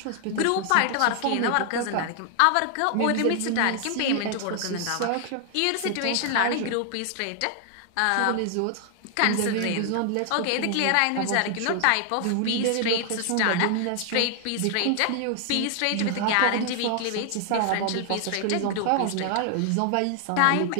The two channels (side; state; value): both; different; correlation 0.00